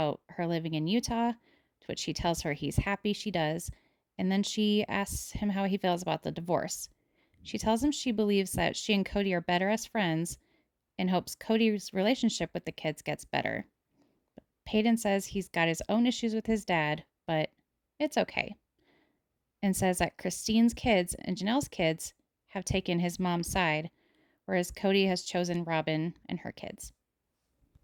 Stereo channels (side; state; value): both; identical; correlation 1.00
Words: her living in Utah, to which he tells her he's happy she does, and then she asks him how he feels about the divorce. She tells him she believes that she and Cody are better as friends and hopes Cody's relationship with the kids gets better. Peyton says he's got his own issues with his dad, but it's okay, and says that Christine's kids and Janelle's kids have taken his mom's side, whereas Cody has chosen Robyn and her kids.